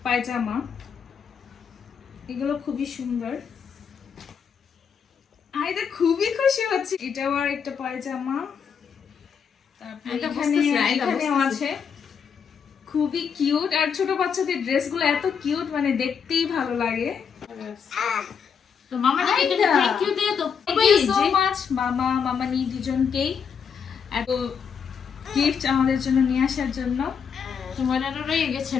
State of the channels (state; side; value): quieter; right; 6.8 dB